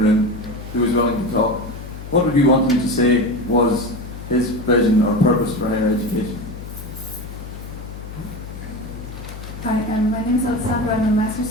who was willing to talk, what would you want him to say was his vision or purpose for higher education? Hi, my name is Alessandra. I'm a master's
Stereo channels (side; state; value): left; noise; hum, 12 dB below the sound